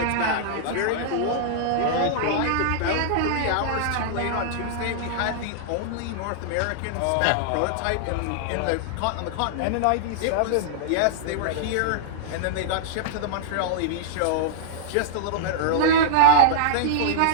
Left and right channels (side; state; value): both; different; correlation -0.01